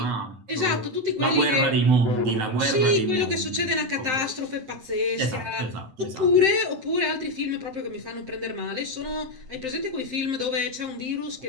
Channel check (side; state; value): left; late; 7.7 ms